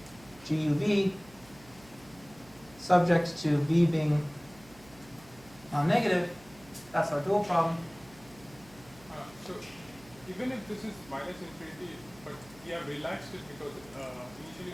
GUV, subject to v being non-negative, that's our dual problem. So even if this is minus infinity, but we have relaxed it because initially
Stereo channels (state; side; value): noise; right; hum, 23 dB below the sound